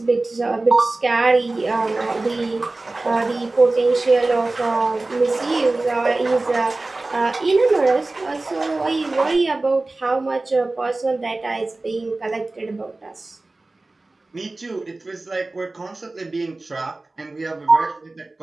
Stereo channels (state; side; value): quieter; left; 3.1 dB